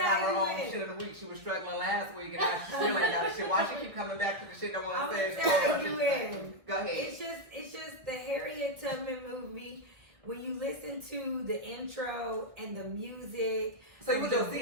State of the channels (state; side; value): late; left; 1.3 ms